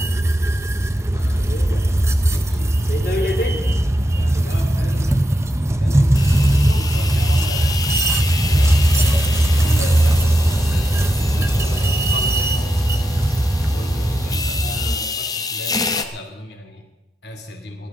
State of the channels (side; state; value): both; normal; correlation 0.86